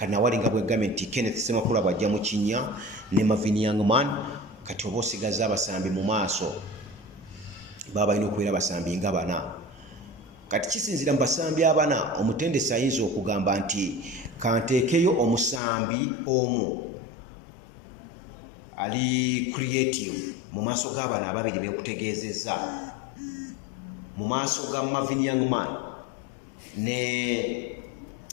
nawali nga bwegambye nti Kenneth Ssemakula bw'ajja mu kinnya ne Marvin Youngman kati oba osigaza abasambi mu maaso baba balina okubeera abasambi nga bana. Kati kisinzira mu basambi abana omutendesi ayinza okugamba nti kanteekeyo omusambi omu ali creative mu maaso g'abana ababiri benkutegeezezza mu maaso ga Marvin Youngman ne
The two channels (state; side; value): drops out; right; at 15.6 s